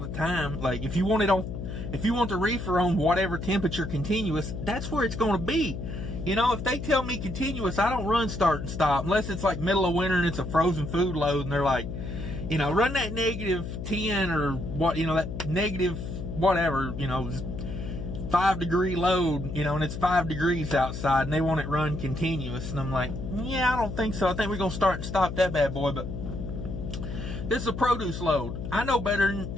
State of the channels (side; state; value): left; noise; hum, 6 dB below the sound